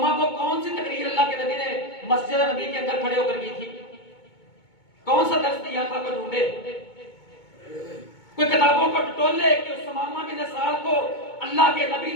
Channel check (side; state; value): right; late; 2.2 ms